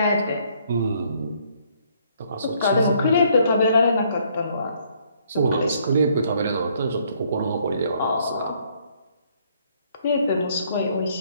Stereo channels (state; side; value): inverted; both; correlation -0.66